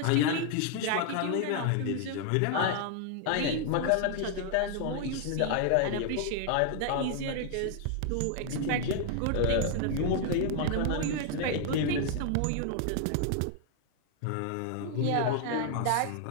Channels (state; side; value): different; both; correlation 0.00